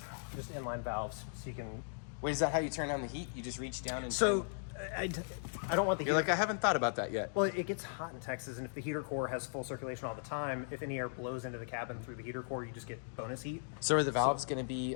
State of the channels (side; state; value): right; silent; digital silence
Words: just inline valves, so you can. Wait, is that how you turn on the heat? You just reach down and. So, I don't want the. You're heater. like, I haven't thought about that yet. Well, it gets hot in Texas, and if the heater core has full circulation all the time, if any air blows into the cabin through the heater core, you just get bonus heat. So are the valves going to be